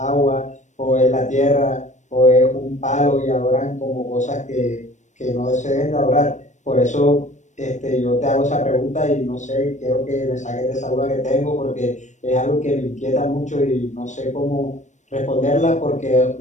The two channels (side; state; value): right; late; 0.35 ms